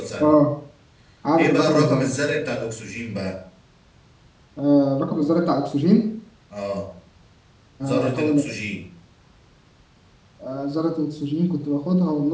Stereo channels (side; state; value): both; identical; correlation 1.00